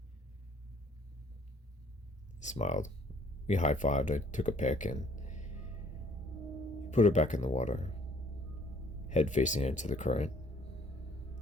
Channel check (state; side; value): normal; both; correlation 0.59